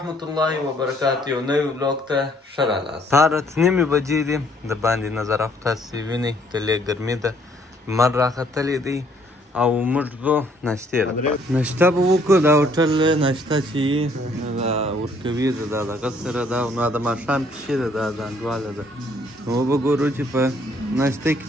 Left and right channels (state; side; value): normal; both; correlation 0.64